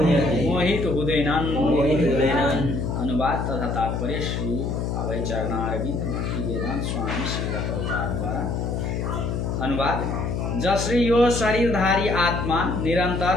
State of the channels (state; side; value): noise; left; hum, 1 dB below the sound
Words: मोहित हुँदैनन्। अनुवाद तथा तात्पर्य श्री अभय चरणारविंद भक्ति वेदांत स्वामी श्री द्वारा। अनुवाद जसरी यो शरीरधारी आत्मा निरन्तर